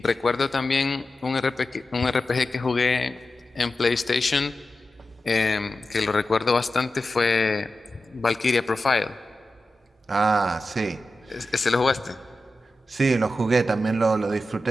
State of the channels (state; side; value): normal; both; correlation 0.92